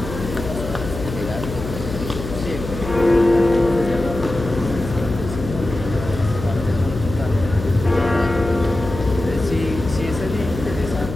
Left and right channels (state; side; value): noise; left; hum, 8 dB below the sound